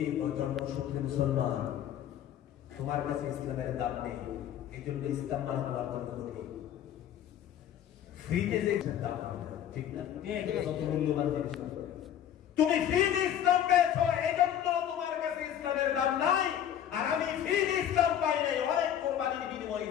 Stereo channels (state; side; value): quieter; right; 10.3 dB